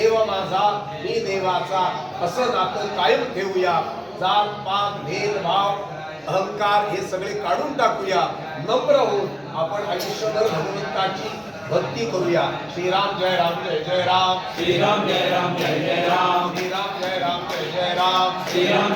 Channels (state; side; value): identical; both; correlation 1.00